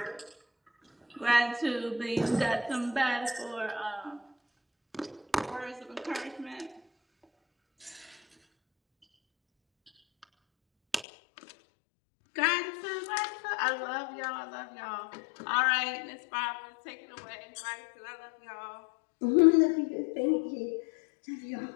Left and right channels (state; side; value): drops out; right; at 11.1 s